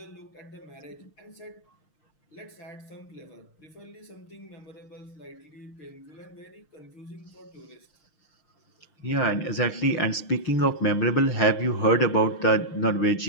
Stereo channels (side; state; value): right; late; 6.5 ms